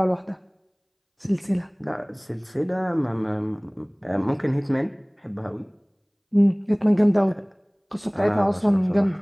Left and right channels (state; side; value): identical; both; correlation 1.00